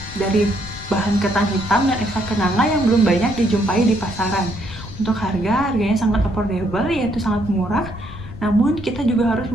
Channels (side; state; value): left; noise; rumble, 14 dB below the sound